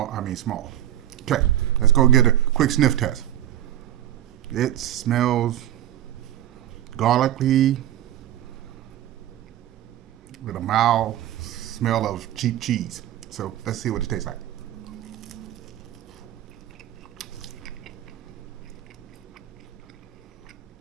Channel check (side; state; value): left; quieter; 12.2 dB